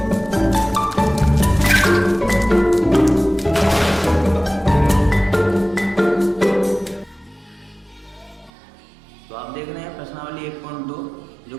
तो आप देख रहे हैं प्रश्नावली 1.2 जो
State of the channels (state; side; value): drops out; left; at 8.5 s